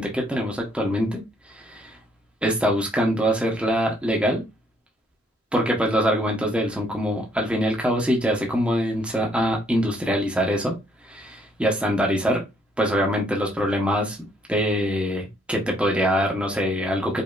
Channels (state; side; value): normal; both; correlation 0.67